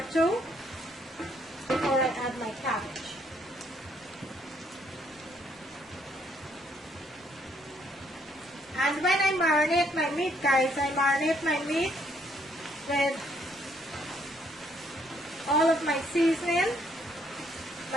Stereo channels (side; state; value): both; normal; correlation 0.69